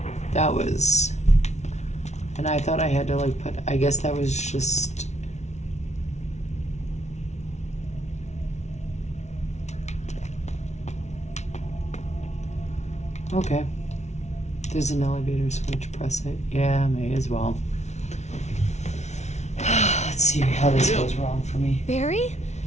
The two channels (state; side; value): late; right; 0.32 ms